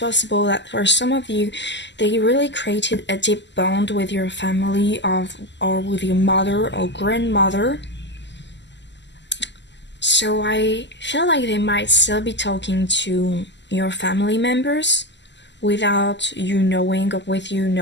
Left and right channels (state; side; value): late; right; 0.51 ms